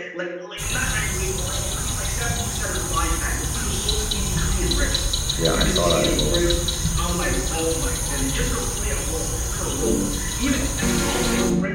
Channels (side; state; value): both; identical; correlation 1.00